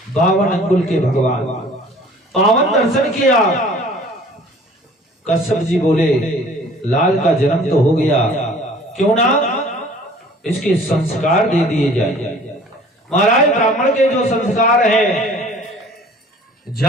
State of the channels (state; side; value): normal; both; correlation 0.50